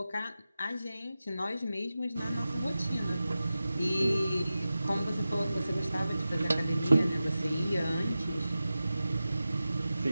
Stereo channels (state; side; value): inverted; both; correlation -0.94